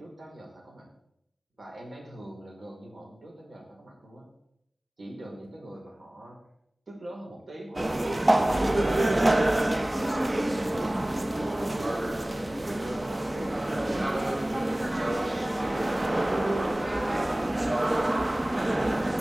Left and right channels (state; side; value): normal; both; correlation 0.98